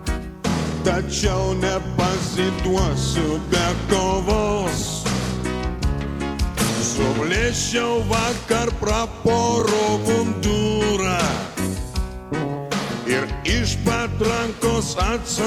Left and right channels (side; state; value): both; identical; correlation 1.00